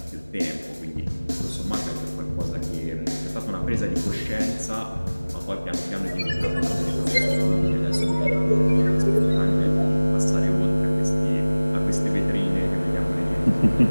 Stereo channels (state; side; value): inverted; both; correlation -1.00